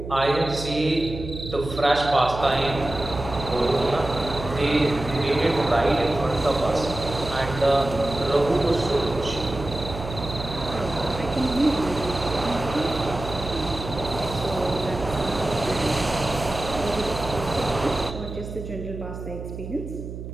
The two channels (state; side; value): noise; right; hum, 9 dB below the sound